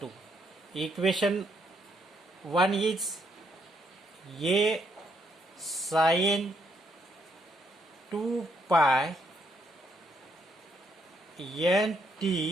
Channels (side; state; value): both; normal; correlation 0.74